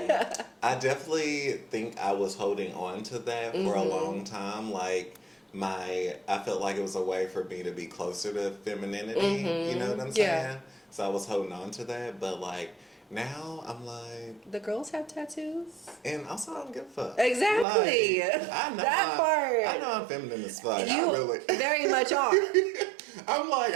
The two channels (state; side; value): drops out; left; at 17.7 s